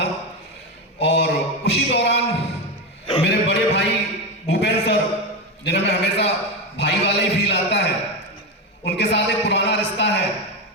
और उसी दौरान मेरे बड़े भाई भूपेंद्र सर, जिन्हें मैं हमेशा भाई वाला ही फील आता है, उनके साथ एक पुराना रिश्ता है।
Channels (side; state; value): both; normal; correlation 0.14